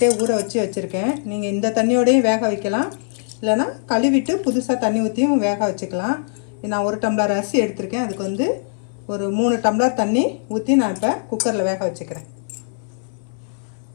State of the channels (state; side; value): silent; right; 60 dB below the other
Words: ஊற வச்சுருக்கேன். நீங்கள் இந்த தண்ணியோடையும் வேக வைக்கலாம், இல்லைனா கழுவிட்டு புதுசாக தண்ணி ஊற்றியும் வேக வச்சுக்கலாம். நான் 1 டம்ளர் அரிசி எடுத்திருக்கேன். அதுக்கு வந்து ஒரு 3 டம்ளர் தண்ணி ஊற்றி நான் இப்போ குக்கரில் வேக வச்சுக்கிறேன்.